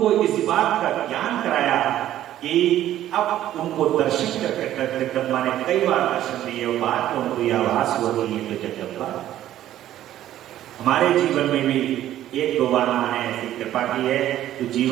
इस बात का ज्ञान कराया कि अब उनको दर्शन करके जगदम्बा ने कई बार दर्शन दिए और बाद में उनको यह आभास हुआ कि ये तो जगदम्बा। हमारे जीवन में भी एक दो बार मां ने ऐसी कृपा की है, तो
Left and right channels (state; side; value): quieter; left; 12.7 dB